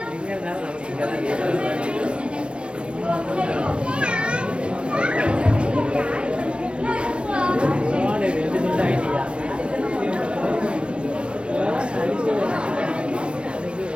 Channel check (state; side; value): late; left; 0.058 ms